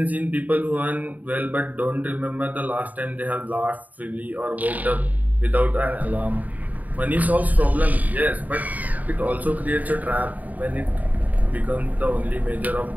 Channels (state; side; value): late; left; 0.076 ms